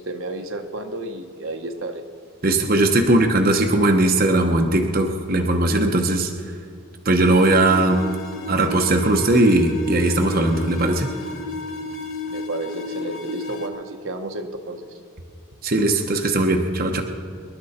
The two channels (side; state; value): both; normal; correlation 0.46